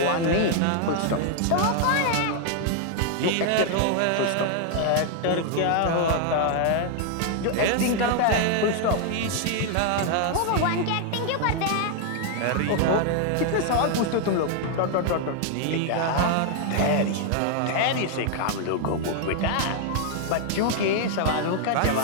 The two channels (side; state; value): both; different; correlation 0.00